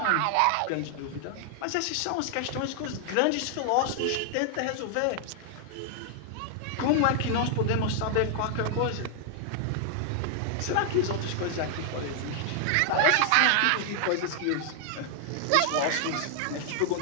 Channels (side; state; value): both; different; correlation 0.00